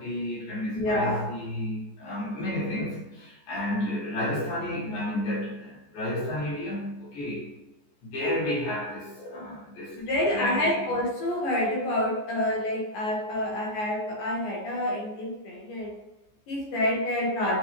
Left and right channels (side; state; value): right; late; 14 ms